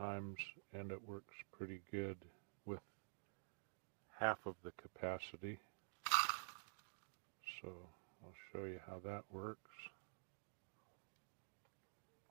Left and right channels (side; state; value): left; silent; digital silence